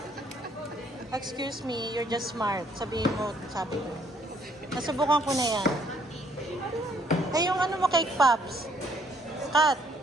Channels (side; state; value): both; normal; correlation 0.66